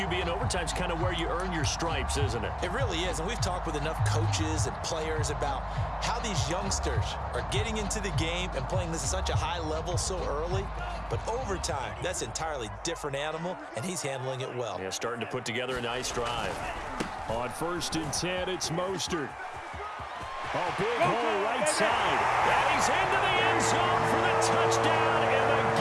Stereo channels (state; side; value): identical; both; correlation 1.00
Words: and overtime's kind of where you earn your stripes, isn't it? It really is, and we've talked with enough coaches and players about how these youngsters are getting into the game and playing this at such a high level so early. But overtime, that's an entirely different animal, and he's handling it well. Yeah, starting to put together a nice drive. On 1st and 10, it's Mostert. Oh, big hole right side. And he's into the end zone for the touchdown and the